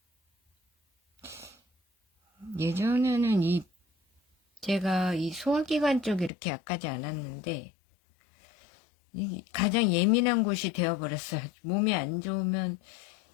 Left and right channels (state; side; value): drops out; right; at 6.3 s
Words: 예전에는 제가 이 소화기관 쪽이 이렇게 약하지 않았는데 가장 예민한 곳이 되어버렸어요. 몸이 안 좋으면